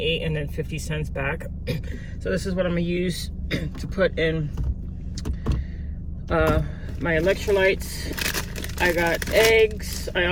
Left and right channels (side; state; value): both; identical; correlation 1.00